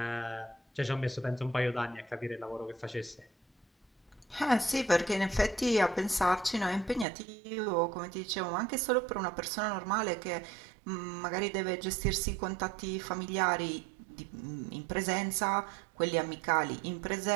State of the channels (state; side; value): drops out; left; at 7.1 s